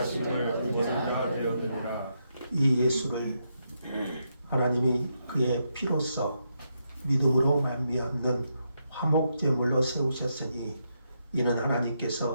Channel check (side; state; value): both; inverted; correlation -0.81